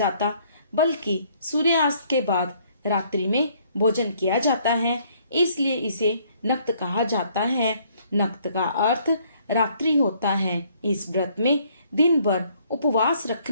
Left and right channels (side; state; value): both; inverted; correlation -0.64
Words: बल्कि सूर्यास्त के बाद रात्रि में भोजन किया जाता है, इसलिए इसे नक्त कहा जाता है। नक्त का अर्थ रात्रि होता है। इस व्रत में दिन भर उपवास